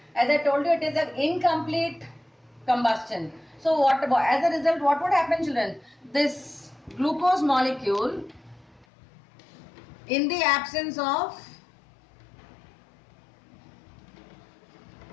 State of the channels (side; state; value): right; drops out; at 8.8 s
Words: As I told you, it is an incomplete combustion. So as a result, what would happen, children? This glucose molecule, in the absence of